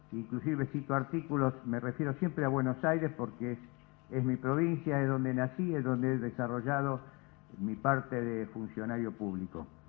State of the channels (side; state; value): right; quieter; 28.3 dB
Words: inclusive cito artículos, me refiero siempre a Buenos Aires porque es mi provincia, es donde nací, es donde he desarrollado mi parte de funcionario público.